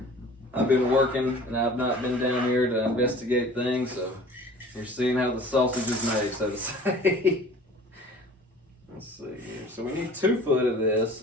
I've been working and I've not been down here to investigate things, so you're seeing how the sausage is made, so to say. Let's see here. So we need 2 foot of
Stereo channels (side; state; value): both; normal; correlation 0.45